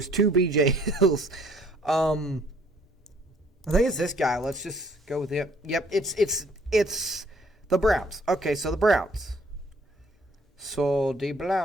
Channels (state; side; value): normal; both; correlation 0.61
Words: 2 BJ Hills. I think it's this guy. Let's just go with him. Yep, it's the Browns. Okay, so the Browns. So the